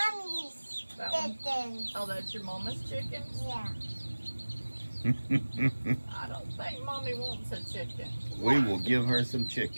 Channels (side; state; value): both; inverted; correlation -1.00